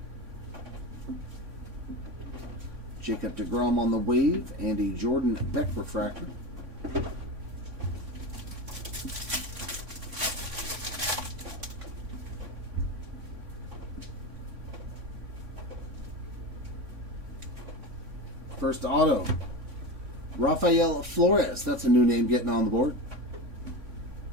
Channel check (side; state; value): left; late; 3.6 ms